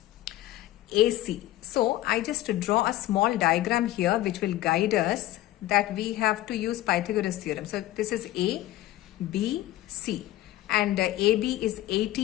So I just draw a small diagram here which will guide us that we have to use Pythagoras theorem. So this is A, B, C, and AB is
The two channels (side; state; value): right; quieter; 15.3 dB